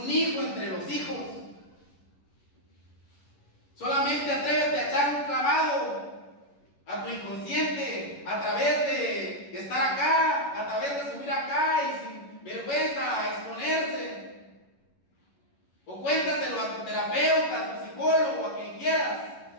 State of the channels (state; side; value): late; right; 11 ms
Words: hijo entre los hijos. Solamente atrévete a echar un clavado a tu inconsciente a través de estar acá, a través de subir acá y sin vergüenza a exponerse. O cuéntaselo a tu terapeuta, a tu psicólogo, a quien quieras,